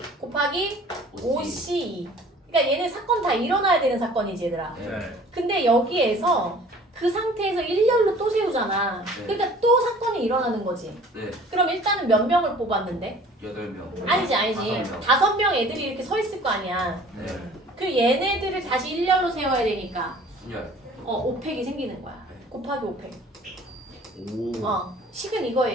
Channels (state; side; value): normal; both; correlation 0.49